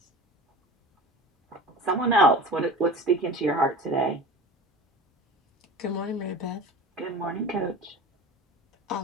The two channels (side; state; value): both; normal; correlation 0.36